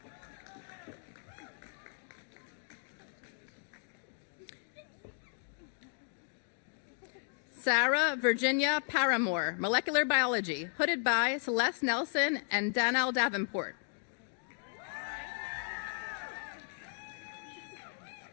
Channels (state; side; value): silent; right; 54 dB below the other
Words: Sarah Virginia Paramore, molecular biology, hooded by Celeste Nelson and Danielle Davenport.